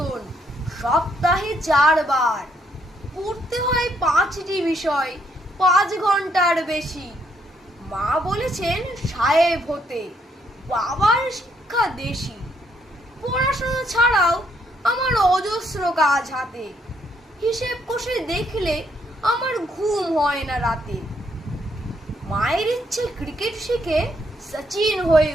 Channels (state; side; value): normal; both; correlation 0.72